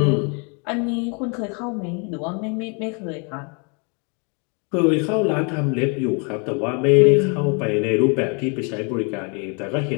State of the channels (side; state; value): right; quieter; 35.5 dB